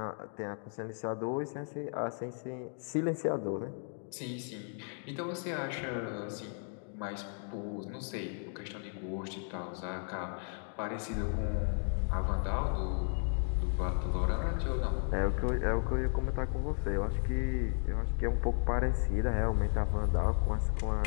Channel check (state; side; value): silent; right; 55 dB below the other